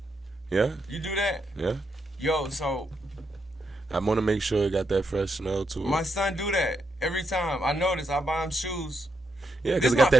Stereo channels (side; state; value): both; normal; correlation 0.80